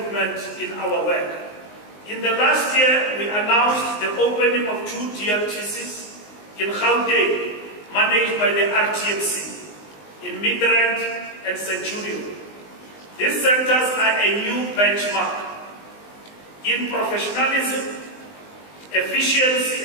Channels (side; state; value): right; late; 19 ms